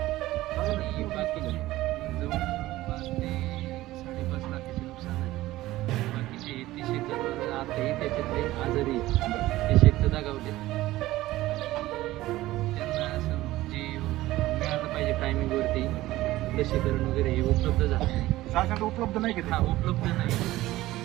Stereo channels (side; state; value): left; quieter; 16.7 dB